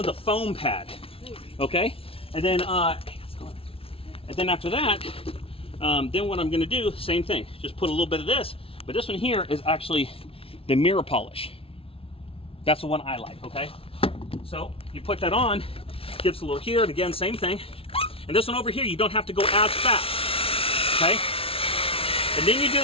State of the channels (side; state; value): right; late; 0.26 ms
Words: a foam pad, okay? And then after that, then what I'm going to do, same thing, just put a little bit of this, but this one here is actually the mirror polish. That's the one I like, okay? So you put that on, gives a little here, and again, same thing. And this one over here, you don't have to go as fast, okay? And then you do